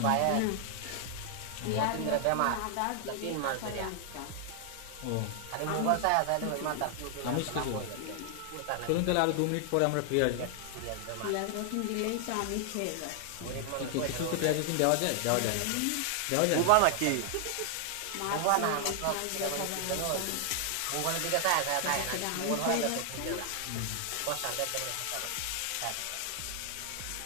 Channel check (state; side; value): different; both; correlation 0.00